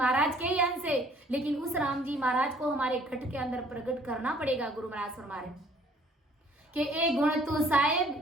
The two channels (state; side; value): normal; both; correlation 0.58